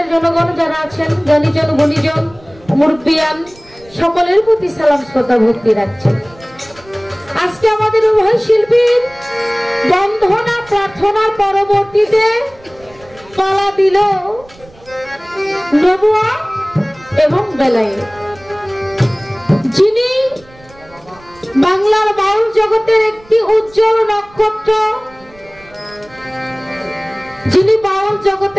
জনগণ যারা আছেন, জ্ঞানীজন গুণীজন মুরব্বিয়ান সকলের প্রতি সালাম শ্রদ্ধা ভক্তি রাখছেন। আজকে আমাদের উভয় শিল্পীর বন্ধনা প্রার্থনার পরবর্তীতে পালা দিল নবুয়া এবং বেলায়েত, যিনি বাংলার বাউল জগতের একটি উজ্জ্বল নক্ষত্র, যিনি বাউল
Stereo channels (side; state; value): right; noise; rumble, 25 dB below the sound